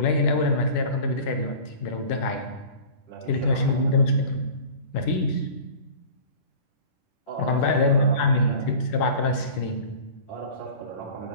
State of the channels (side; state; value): right; late; 10 ms